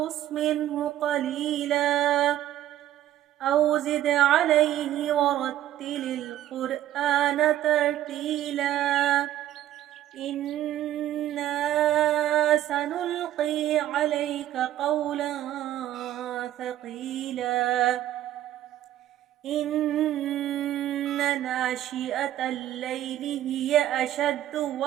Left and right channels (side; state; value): left; quieter; 12.8 dB